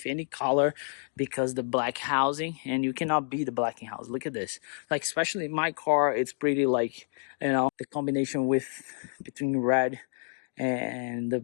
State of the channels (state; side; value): silent; right; digital silence